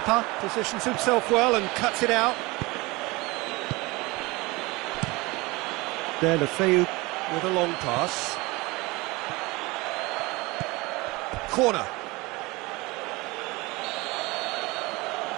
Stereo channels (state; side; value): quieter; left; 23.3 dB